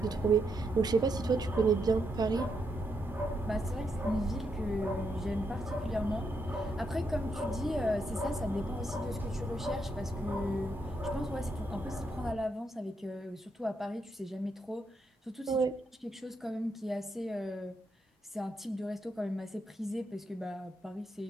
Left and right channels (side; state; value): both; normal; correlation 0.80